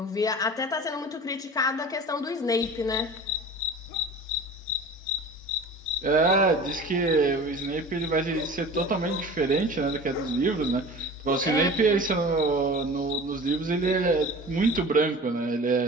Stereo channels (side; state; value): both; normal; correlation 0.39